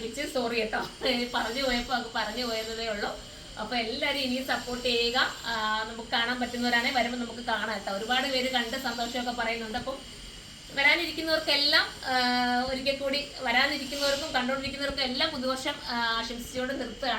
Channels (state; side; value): identical; both; correlation 1.00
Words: സോറി കേട്ടോ, പറഞ്ഞു പോയതേ ഉള്ളൂ. അപ്പൊ എല്ലാവരും ഇനിയും സപ്പോർട്ട് ചെയ്യുക. നമുക്ക് കാണാൻ പറ്റുന്നവരാണെങ്കിൽ വരുമ്പോൾ നമുക്ക് കാണാം കേട്ടോ. ഒരുപാട് പേര് കണ്ട് സന്തോഷമൊക്കെ പറയുന്നുണ്ട്. അപ്പം വരാനിരിക്കുന്നവർക്കെല്ലാം ഒരിക്കൽ കൂടി, വരാനിരിക്കുന്നവർക്കും കണ്ടുകൊണ്ടിരിക്കുന്നവർക്കും എല്ലാം പുതുവർഷം ആശംസിച്ചുകൊണ്ട്